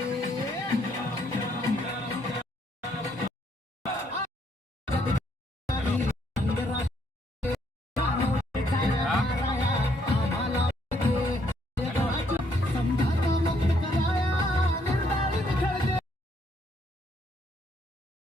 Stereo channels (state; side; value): normal; both; correlation 0.70